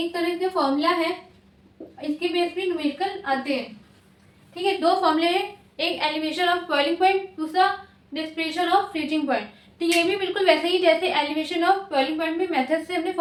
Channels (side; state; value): both; identical; correlation 1.00